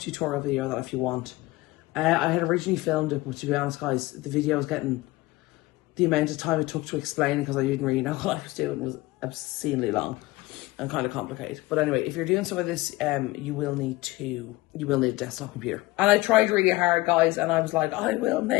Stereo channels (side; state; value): right; quieter; 19.9 dB